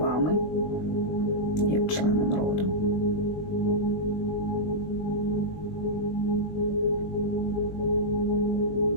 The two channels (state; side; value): late; right; 20 ms